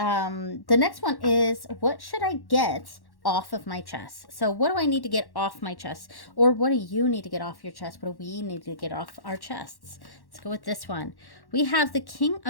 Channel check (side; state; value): right; late; 1.1 ms